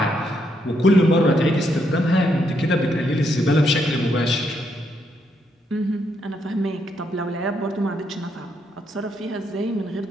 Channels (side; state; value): both; normal; correlation 0.76